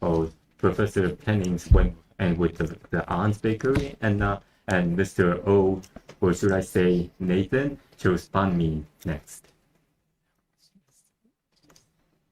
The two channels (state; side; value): identical; both; correlation 1.00